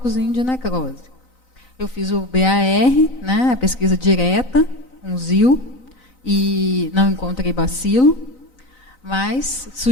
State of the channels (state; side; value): late; right; 3.9 ms